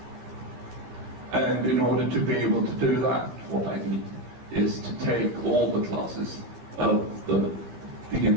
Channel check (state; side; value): late; left; 15 ms